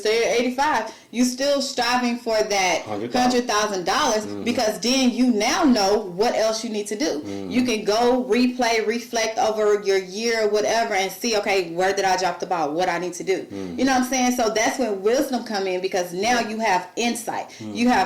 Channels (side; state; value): both; identical; correlation 1.00